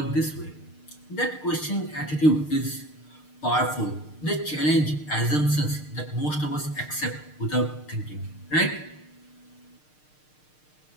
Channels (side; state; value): right; late; 6.6 ms